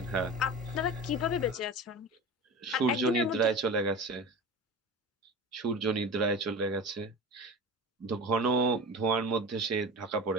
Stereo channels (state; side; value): normal; both; correlation 0.31